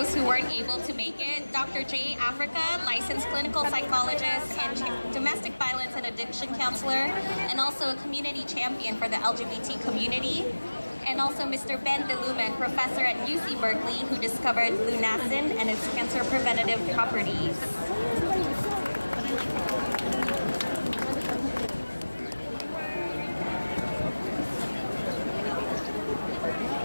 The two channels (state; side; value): inverted; both; correlation -1.00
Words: who weren't able to make it. Dr. J. Africa, licensed clinical psychologist and domestic violence and addiction counselor, and also a community champion for the LGBT community. And also Mr. Ben DeLumen, professor at UC Berkeley, who discovered lunacin and its cancer preventative properties.